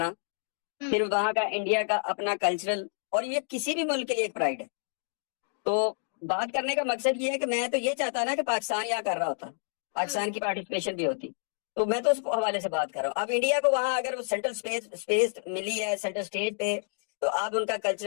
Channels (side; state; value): right; silent; digital silence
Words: फिर वहां का इंडिया का अपना कल्चरल, और ये किसी भी मुल्क के लिए एक प्राइड है। तो बात करने का मकसद ये है कि मैं तो ये चाहता ना कि पाकिस्तान यहाँ कर रहा होता, पाकिस्तान की पार्टिसिपेशन भी होती। तो मैं तो उस हवाले से बात कर रहा हूँ। अब इंडिया को वहां अगर वो सेंट्रल स्पेस स्पेस मिली है सेंटर स्टेज पे, तो अब उनका